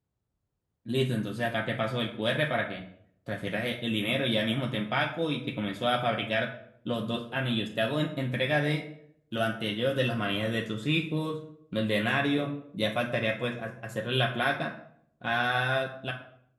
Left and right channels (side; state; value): both; identical; correlation 1.00